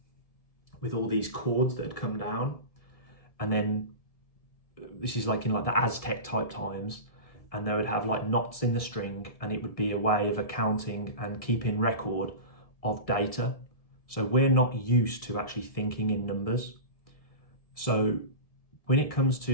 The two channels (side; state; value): right; late; 1.7 ms